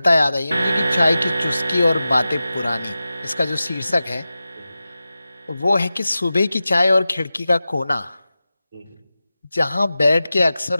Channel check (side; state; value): both; inverted; correlation -0.94